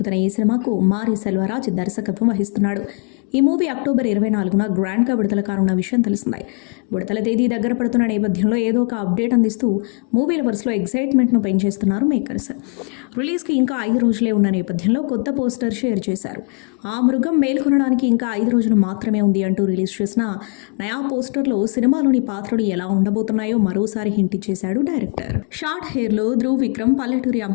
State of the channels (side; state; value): right; quieter; 37.9 dB